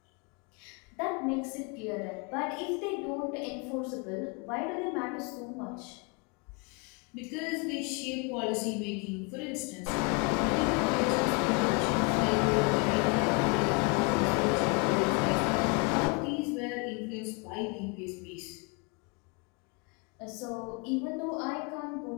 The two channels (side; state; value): right; quieter; 31.6 dB